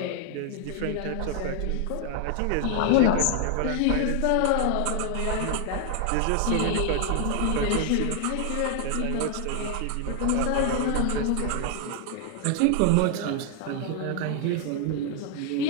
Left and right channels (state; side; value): different; both; correlation 0.00